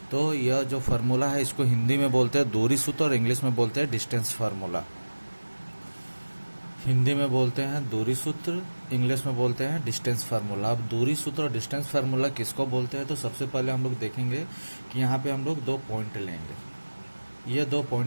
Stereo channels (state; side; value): inverted; both; correlation -1.00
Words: तो यह जो फार्मूला है इसको हिंदी में बोलते हैं दूरी सूत्र और इंग्लिश में बोलते हैं डिस्टेंस फार्मूला। हिंदी में बोलते हैं दूरी सूत्र, इंग्लिश में बोलते हैं डिस्टेंस फार्मूला। अब दूरी सूत्र और डिस्टेंस फार्मूला किसको बोलते हैं, तो सबसे पहले हम लोग देखेंगे कि यहाँ पे हम लोग 2 पॉइंट लेंगे। ये 2